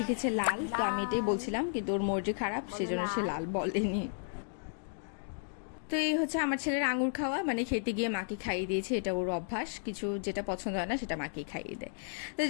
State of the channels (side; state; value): right; silent; digital silence